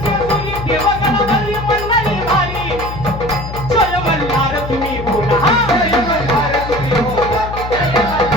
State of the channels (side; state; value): left; noise; hum, 9 dB below the sound